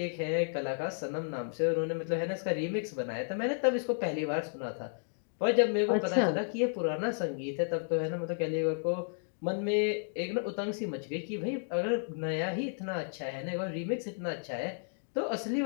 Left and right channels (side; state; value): right; silent; digital silence